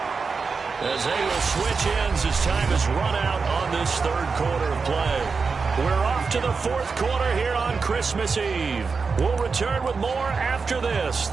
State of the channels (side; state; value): left; quieter; 4.9 dB